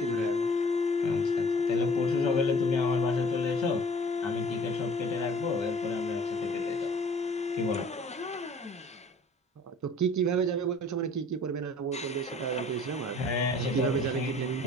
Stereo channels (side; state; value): both; normal; correlation 0.52